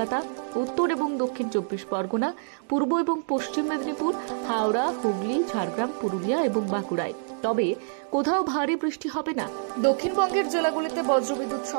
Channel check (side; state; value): left; silent; digital silence